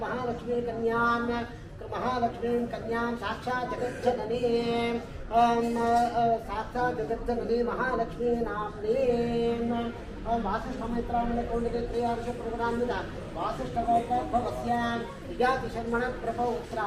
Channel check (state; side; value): identical; both; correlation 1.00